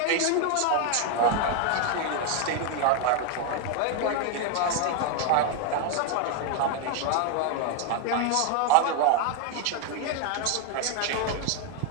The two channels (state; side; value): different; both; correlation 0.01